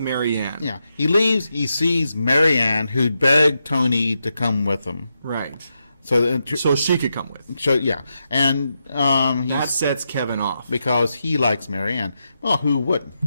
Yeah, he leaves. He sees Marianne, who begged Tony to come with him. Right. So she could come with. So yeah, and That sets Kevin off. because he likes Marianne. Well, who wouldn't?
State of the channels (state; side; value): inverted; both; correlation -0.85